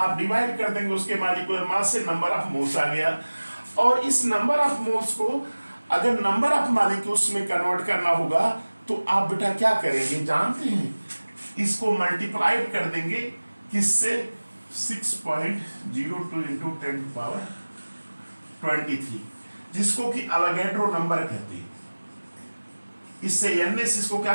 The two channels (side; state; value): both; inverted; correlation -1.00